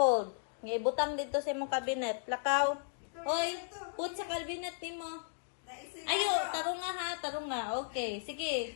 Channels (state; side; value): silent; right; digital silence